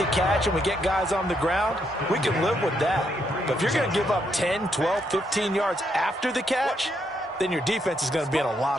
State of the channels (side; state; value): both; normal; correlation 0.77